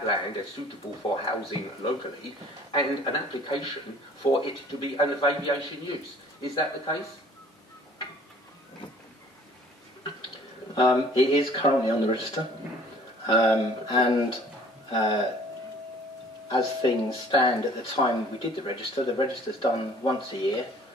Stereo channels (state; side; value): normal; both; correlation 0.54